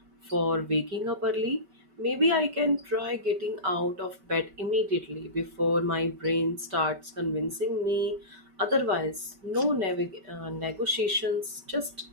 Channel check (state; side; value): late; left; 5.2 ms